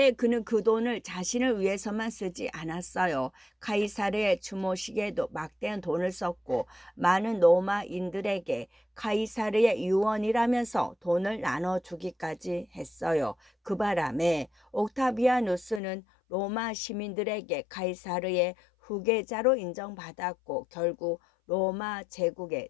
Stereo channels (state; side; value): drops out; right; at 15.8 s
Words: 그는 그 돈을 자신을 위해서만 쓰지 않았어요. 카이사르의 추모식에도 막대한 돈을 썼고 많은 로마인들에게 카이사르의 유언이라면서 돈을 나눠주기까지 했어요. 그 바람에 옥타비아누스는 로마 시민들에게 카이사르의 후계자로 인정받았고 결국 로마 제국의